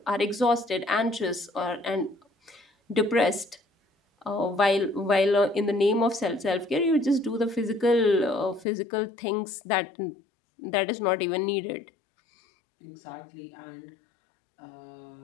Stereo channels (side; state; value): right; drops out; at 8.7 s